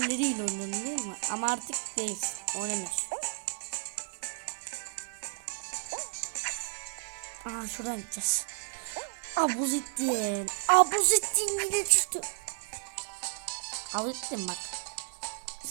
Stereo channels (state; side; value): silent; left; 56 dB below the other